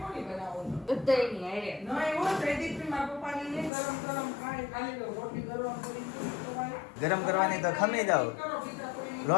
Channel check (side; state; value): right; drops out; at 3.7 s